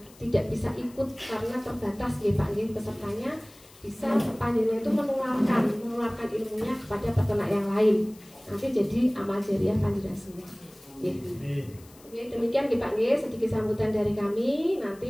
tidak bisa ikut karena terbatas ya Pak nggih pesertanya, bisa panjenengan itu menularkan ilmunya kepada peternak yang lain. Nanti jadi amal jariah panjenengan semua. Oke, demikian Pak nggih sedikit sambutan dari kami.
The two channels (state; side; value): noise; left; hiss, 25 dB below the sound